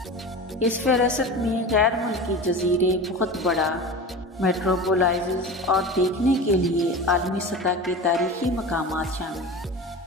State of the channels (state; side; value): normal; both; correlation 0.31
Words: इस फ़हरिस्त में गैर मुल्की जजीरे, बहुत बड़ा मेट्रोपोलिस और देखने के लिए आलमी सतह के तारीखी मकामात शामिल हैं।